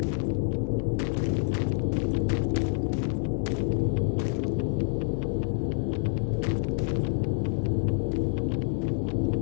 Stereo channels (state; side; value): silent; right; 60 dB below the other